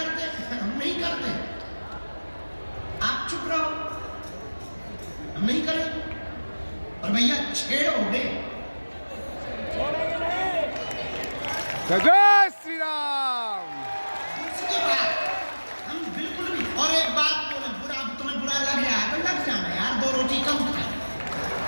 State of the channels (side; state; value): both; inverted; correlation -1.00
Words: हैं, हम नहीं करते। आप चुप रहो, हम नहीं करें। और भैया छेड़ोगे, जय जय श्री राम। दूसरी बात हम बिल्कुल भी। और एक बात बोले, बुरा तुम्हें बुरा लग रहा है तो लग जाना यार, 2 रोटी कम खाए।